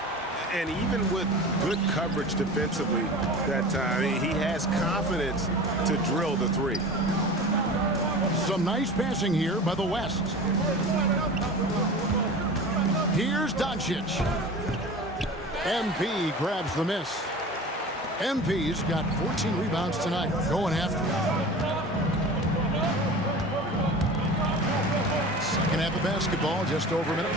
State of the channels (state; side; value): normal; both; correlation 0.36